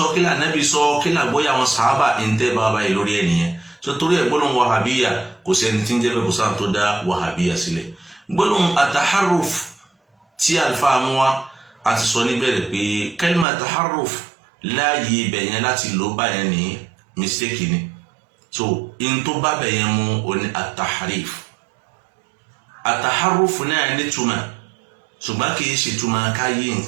kí ni Ànábì sọ kí ni àgbọ́yé àwọn sàhábà ń tẹ́ bàbá yìí lórí ẹnìyẹn so torí ẹ̀ gbólóhùn wàhábíyà kò sẹ́ni tí ń jẹ́ bẹ́ẹ̀ kò sáà tó dá wàhábíyà sílẹ̀ gbólóhùn àtàhárùf tí àlùfáà mú wa àti sọ níbẹ̀rẹ̀ pé kẹ́límà àtàhárùf láàyè ibẹ̀ yẹn láti lò báyẹn ní mistake ni so in tó bá bẹ̀ yẹn mú oní àtàhárìf àtàhárùf náà nítumọ̀ ṣùgbọ́n kì í ṣe ìtumọ̀ ká yí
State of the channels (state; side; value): drops out; left; at 13.5 s